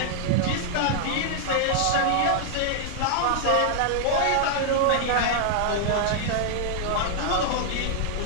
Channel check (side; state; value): both; different; correlation -0.01